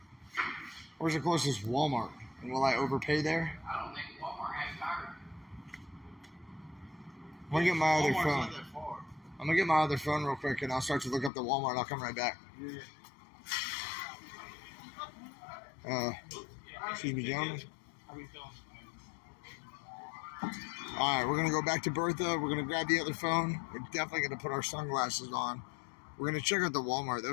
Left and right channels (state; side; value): drops out; right; at 11.3 s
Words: Where's the closest Walmart? And will I overpay there? I don't think Walmart has tires. I'm going to get my other Walmart's phone. not that far. I'm going to get my other phone real quick, and I'll start to look up the Walmart. I'll come right back. Yeah. Excuse me, gentlemen. All right, we're going to go back to Bertha. We're going to grab the other phone. We're definitely going to put our sunglasses on. We're going to check out the Walmart. That